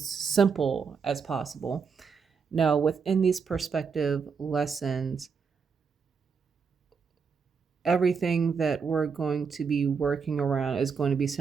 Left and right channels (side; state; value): left; quieter; 5.8 dB